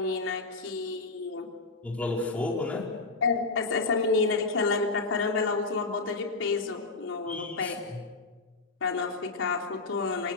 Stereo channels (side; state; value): right; quieter; 3.6 dB